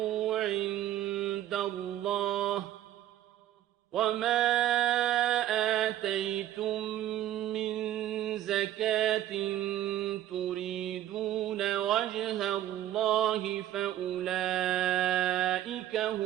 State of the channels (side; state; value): left; quieter; 12.6 dB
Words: عِندَ اللَّهِ وَمَا آتَيْتُم مِّن زَكَاةٍ تُرِيدُونَ وَجْهَ اللَّهِ فَأُولَٰئِكَ